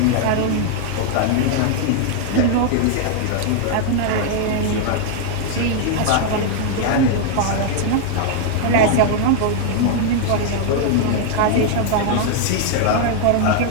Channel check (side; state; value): both; different; correlation 0.00